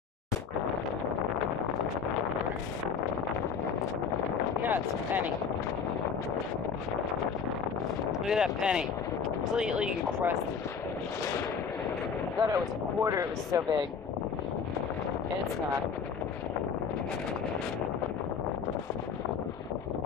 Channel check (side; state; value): right; quieter; 6.3 dB